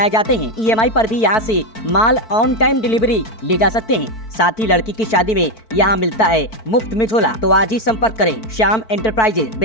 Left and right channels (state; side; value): late; right; 4.5 ms